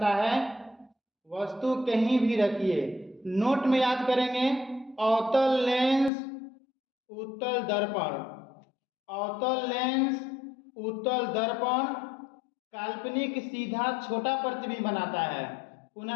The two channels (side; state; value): right; drops out; at 6.1 s